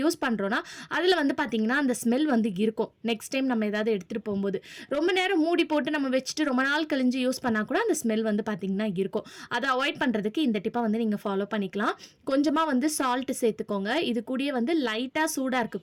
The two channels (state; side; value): identical; both; correlation 1.00